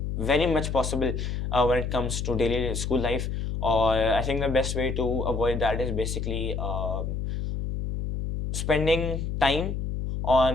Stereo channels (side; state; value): left; noise; hum, 3 dB below the sound